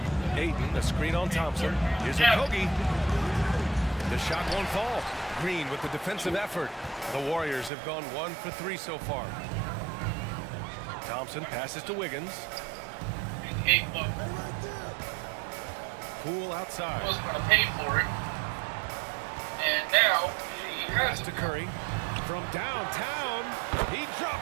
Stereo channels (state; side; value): drops out; left; at 7.7 s